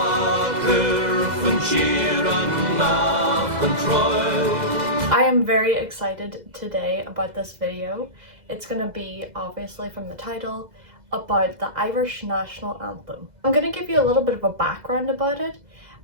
I am very excited today about this video. It's going to be, obviously from the title, about the Irish National Anthem. I'm going to give you a little bit of a background about it,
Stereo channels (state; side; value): late; left; 2.0 ms